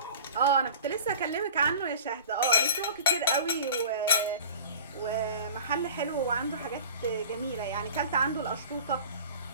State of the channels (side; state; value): both; inverted; correlation -0.41